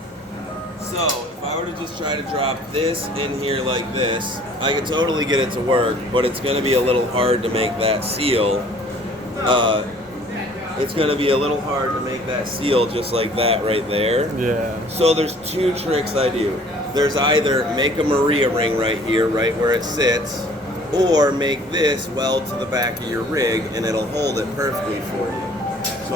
So, if I were to just try to drop this in here like this, I could totally get it to work, but it's going to be a little hard to make that seal. it's going to be a little hard to make that seal just like that right there. Yeah. So there's two tricks I do. There's either make a Maria ring right here, right where it sits, or make this weld to the back of your rig and it'll hold it perfectly for you. So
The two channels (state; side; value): normal; both; correlation 0.53